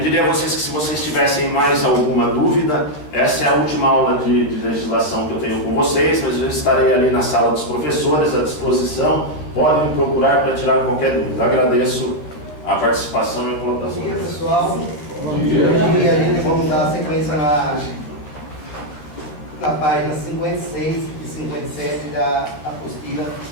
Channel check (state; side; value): late; right; 13 ms